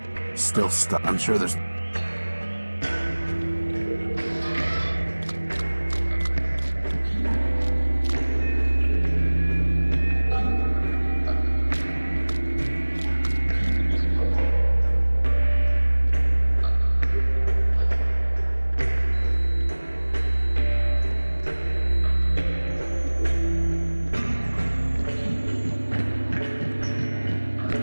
Still stuck. I'm sure there's...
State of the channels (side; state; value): both; inverted; correlation -1.00